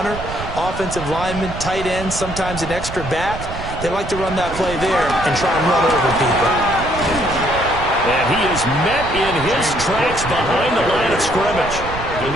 offensive linemen, tight ends, sometimes an extra back, they like to run that play there and try and run over people. And he is met in his tracks behind the line of scrimmage.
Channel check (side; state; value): right; noise; rumble, 9 dB below the sound